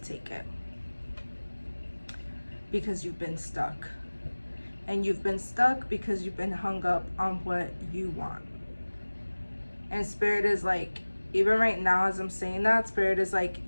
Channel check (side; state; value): both; inverted; correlation -1.00